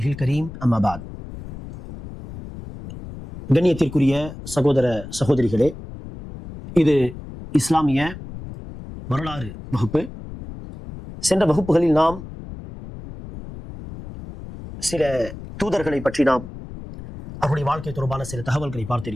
الكريم أما بعد. கண்ணியத்திற்குரிய சகோதர சகோதரிகளே, இது இஸ்லாமிய வரலாறு வகுப்பு. சென்ற வகுப்புகளில் நாம் சில தூதர்களை பற்றி அவருடைய வாழ்க்கை தொடர்பான சில தகவல்களை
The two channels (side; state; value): left; noise; rumble, 13 dB below the sound